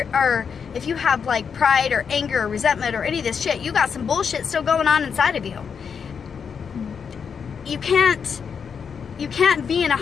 or if you have like pride or anger or resentment or any of this shit, you got some bullshit still going on inside of you. You can't be in a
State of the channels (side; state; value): right; quieter; 6.5 dB